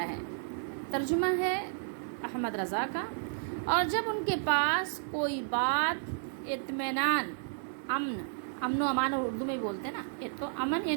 ہے، ترجمہ ہے احمد رضا کا۔ اور جب ان کے پاس کوئی بات اطمینان، امن و امان اردو میں بولتے ہیں نا، تو امن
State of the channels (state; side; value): silent; left; 56 dB below the other